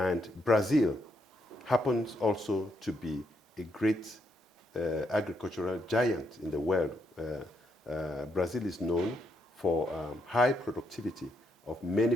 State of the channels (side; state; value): both; normal; correlation 0.77